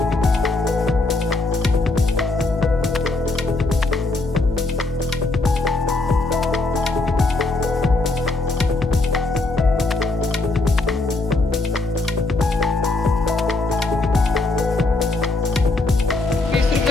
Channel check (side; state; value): right; quieter; 3.2 dB